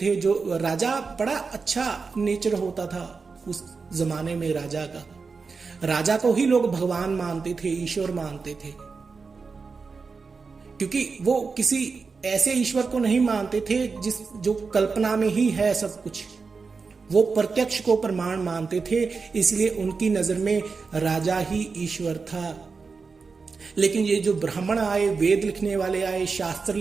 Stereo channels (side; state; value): left; quieter; 4.8 dB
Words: जो राजा बड़ा अच्छा नेचर होता था उस जमाने में राजा को ही लोग भगवान मानते थे, ईश्वर मानते थे, क्योंकि वो किसी ऐसे ईश्वर को नहीं मानते थे जो कल्पना में ही है सब कुछ। वो प्रत्यक्ष को प्रमाण मानते थे, इसलिए उनकी नजर में राजा ही ईश्वर था। लेकिन ये जो ब्राह्मण आए, वेद लिखने वाले आए, शास्त्र